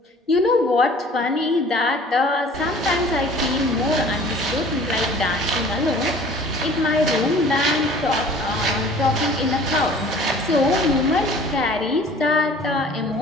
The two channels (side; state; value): both; normal; correlation 0.48